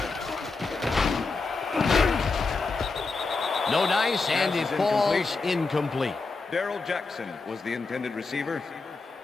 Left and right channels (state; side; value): quieter; right; 4.0 dB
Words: No dice, and it falls incomplete. Darrell Jackson was the intended receiver.